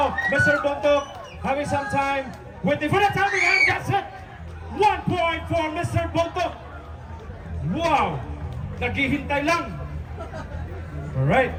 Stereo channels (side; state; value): both; identical; correlation 1.00